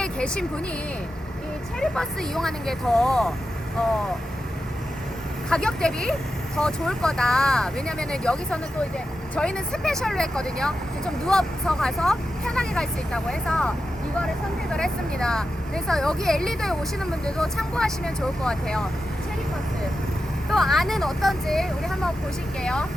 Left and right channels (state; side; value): normal; both; correlation 0.90